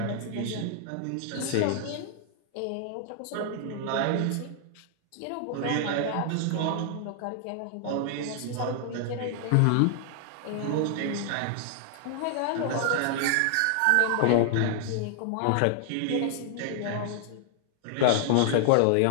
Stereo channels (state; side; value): different; both; correlation 0.00